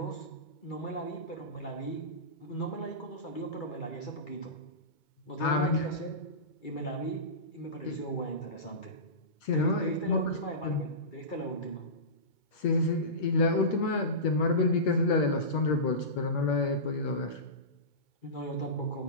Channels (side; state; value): right; late; 2.2 ms